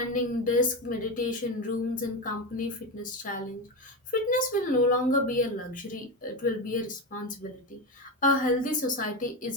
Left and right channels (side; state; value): both; normal; correlation 0.16